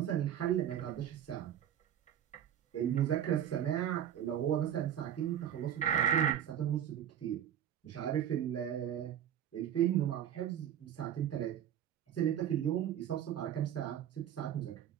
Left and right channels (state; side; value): quieter; left; 10.1 dB